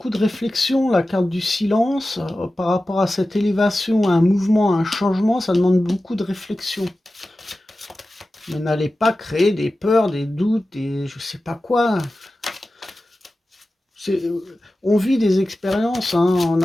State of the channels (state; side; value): normal; both; correlation 0.94